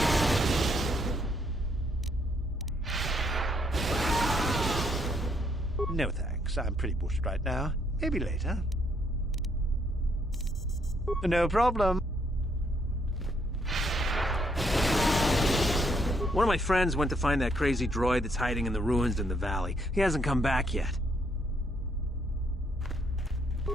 No thanks. I'm pretty bushed right now. Maybe later. No problem. One of my friends went to find that crazy droid that's hiding in the ruins in the valley. He hasn't come back yet.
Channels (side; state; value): both; normal; correlation 0.71